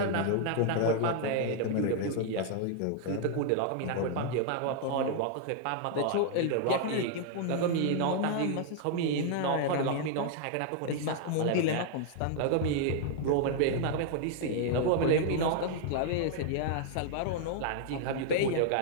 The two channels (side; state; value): both; different; correlation 0.00